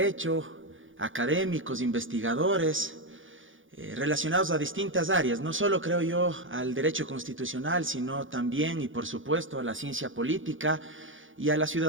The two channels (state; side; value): late; left; 0.57 ms